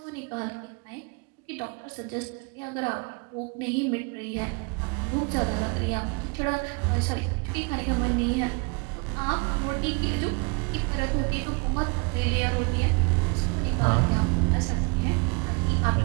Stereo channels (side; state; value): left; quieter; 32.1 dB